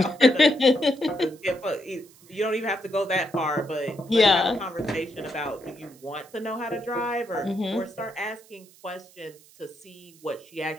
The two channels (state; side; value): noise; right; hiss, 25 dB below the sound